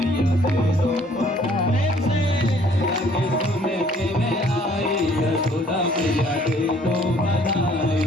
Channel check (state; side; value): normal; both; correlation 0.59